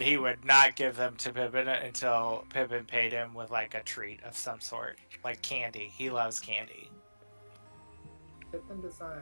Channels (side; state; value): both; inverted; correlation -1.00